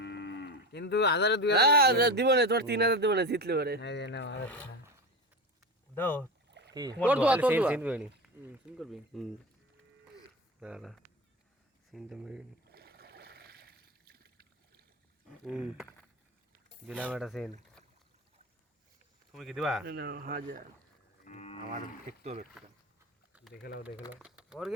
কিন্তু 1000 দিব না তোর 3000 দিব না জিতলে পারে এই যে নাও দাও কি তোর দোয়া তোর দোয়া সিন করবি সিন করবি দাঁড়া সিনটা মেরে দিলাম একটা সিন তুমি কি দিবা না হাজার আমার দেখতে হবে একটু দেখে নাও ওর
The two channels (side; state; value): both; normal; correlation 0.23